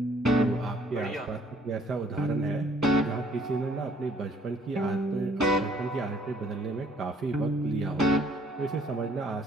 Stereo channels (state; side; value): normal; both; correlation 0.61